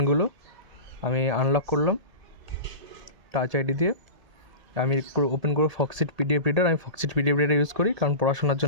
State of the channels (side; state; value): left; late; 1.8 ms